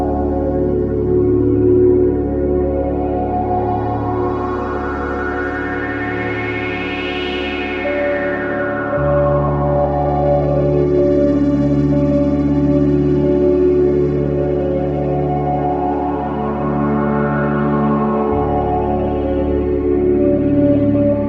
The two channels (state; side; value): identical; both; correlation 1.00